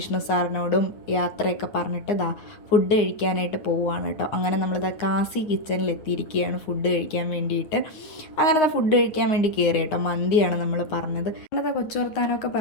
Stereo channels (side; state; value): right; late; 9.6 ms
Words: സാറിനോടും യാത്രയൊക്കെ പറഞ്ഞിട്ട് ഫുഡ് കഴിക്കാനായിട്ട് പോവുകയാണ് കേട്ടോ. അങ്ങനെ നമ്മളിതാ കാസി കിച്ചണിൽ എത്തിയിരിക്കുകയാണ് ഫുഡ് കഴിക്കാൻ വേണ്ടിയിട്ട്. അങ്ങനെ ഫുഡ് കഴിക്കാൻ വേണ്ടി കയറി കേട്ടോ. മന്തിയാണ് നമ്മൾ പറഞ്ഞത്. അങ്ങനെ കൊച്ചു വർത്താനമൊക്കെ